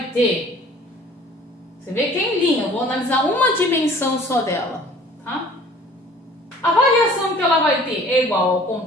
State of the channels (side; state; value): both; normal; correlation 0.50